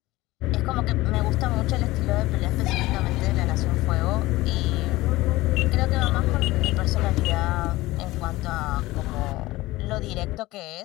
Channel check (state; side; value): quieter; right; 18.8 dB